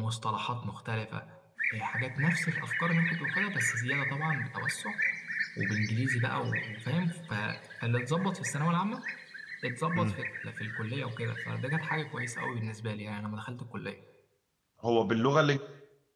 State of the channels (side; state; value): both; identical; correlation 1.00